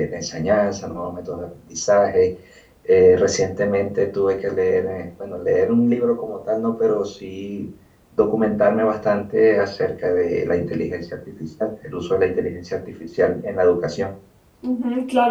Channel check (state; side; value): identical; both; correlation 1.00